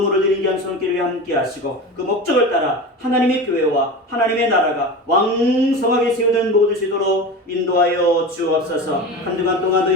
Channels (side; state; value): both; normal; correlation 0.29